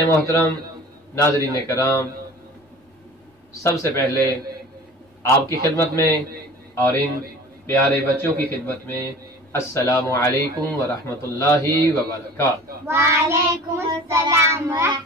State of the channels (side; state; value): both; normal; correlation 0.42